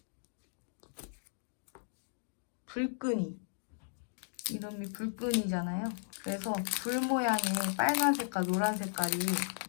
불끈이. 이름이 불끈이잖아요. 그래서 불 모양의 빨간 색깔, 노란 색깔이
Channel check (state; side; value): silent; right; digital silence